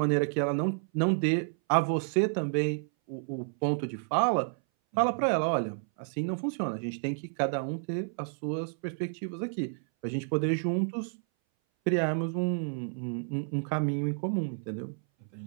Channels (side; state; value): left; silent; 58 dB below the other